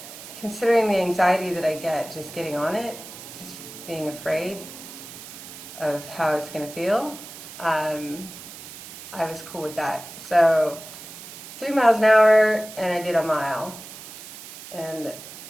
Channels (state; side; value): noise; right; hiss, 14 dB below the sound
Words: considering the anxiety that I get just getting on it, just being afraid of how it's going to feel, I was cool with that. So 3 miles an hour, and I did a mile. And